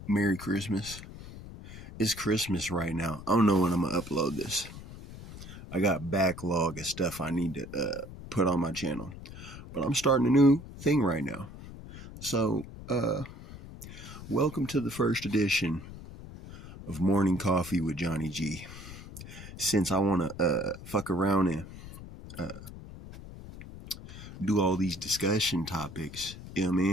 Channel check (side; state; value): left; noise; rumble, 14 dB below the sound